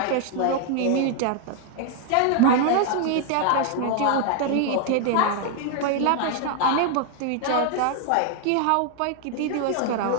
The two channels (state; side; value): different; both; correlation 0.00